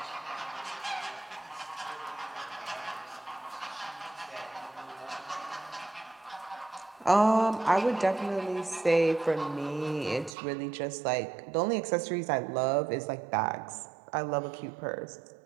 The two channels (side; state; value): left; drops out; at 10.3 s